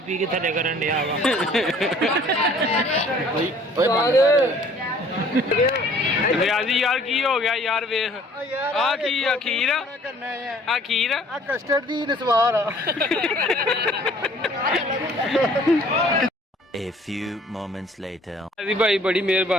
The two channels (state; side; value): normal; both; correlation 0.55